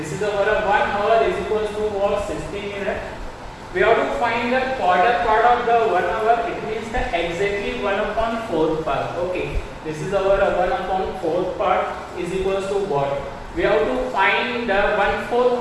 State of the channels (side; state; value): both; identical; correlation 1.00